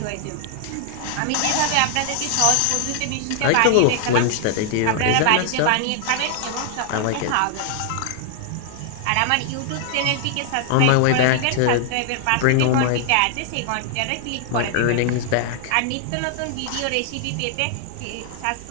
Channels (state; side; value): different; both; correlation 0.00